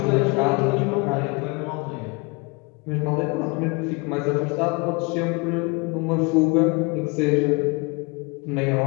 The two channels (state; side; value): quieter; right; 28.4 dB